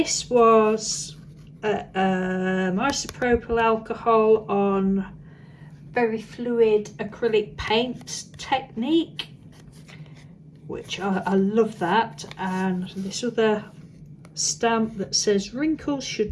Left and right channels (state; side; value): identical; both; correlation 1.00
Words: was isopropyl alcohol on very fluid acrylic paint technique, which I love that. And this other stamp that says wrinkles